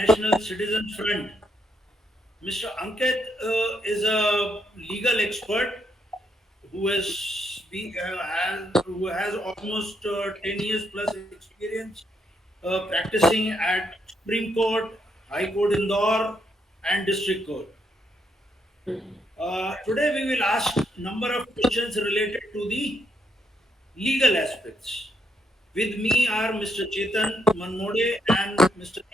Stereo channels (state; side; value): normal; both; correlation 0.76